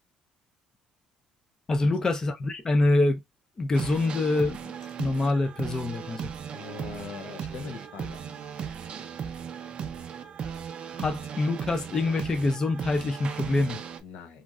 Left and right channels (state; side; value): normal; both; correlation 0.88